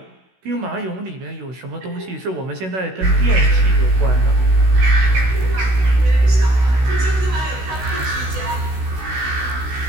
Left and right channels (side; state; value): left; late; 16 ms